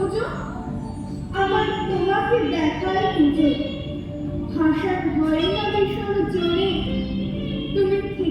আমার তোমাকে দেখার খুঁজো। ভাষার ভয়ে না ভীষণ জোরে, তুমি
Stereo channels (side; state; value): both; identical; correlation 1.00